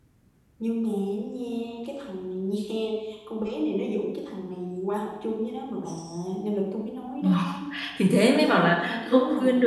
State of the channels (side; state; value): both; identical; correlation 1.00